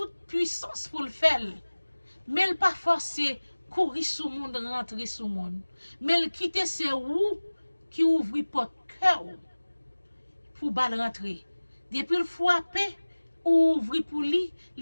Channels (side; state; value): both; inverted; correlation -1.00